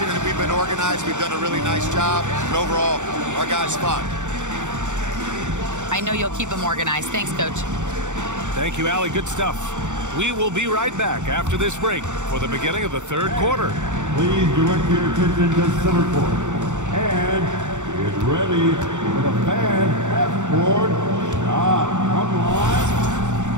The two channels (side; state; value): left; late; 0.85 ms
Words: and we've been organized, we've done a really nice job. And overall, our guys fun. I know you'll keep them organized. Thanks, Coach. Thank you, Allie. Good stuff. We will be right back after this break for the beginning of the third quarter. Please direct your attention to center court. And get ready for the fan half-court shot from line.